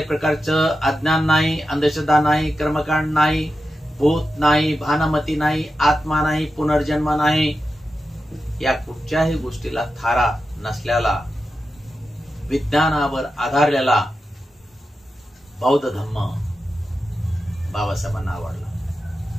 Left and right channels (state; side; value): normal; both; correlation 0.90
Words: प्रकारचं अज्ञान नाही, अंधश्रद्धा नाही, कर्मकांड नाही, भूत नाही, भानमती नाही, आत्मा नाही, पुनर्जन्म नाही, या कुठच्याही गोष्टीला थारा नसलेला, विज्ञानावर आधारलेला बौद्ध धम्म बाबासाहेबांना आवडला.